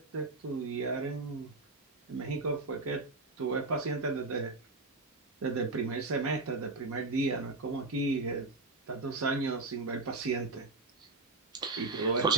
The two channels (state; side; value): quieter; left; 3.4 dB